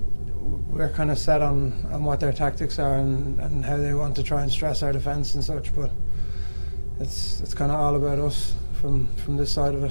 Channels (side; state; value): both; inverted; correlation -1.00